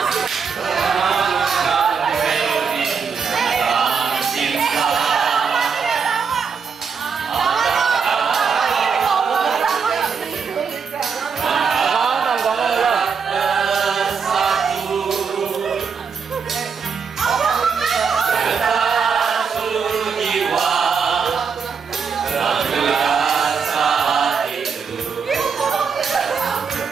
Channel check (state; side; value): quieter; left; 5.9 dB